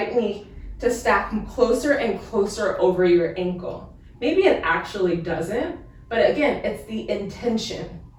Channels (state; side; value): identical; both; correlation 1.00